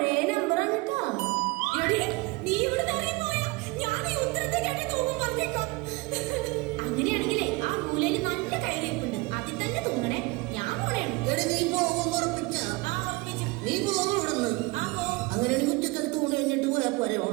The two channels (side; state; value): left; quieter; 24.8 dB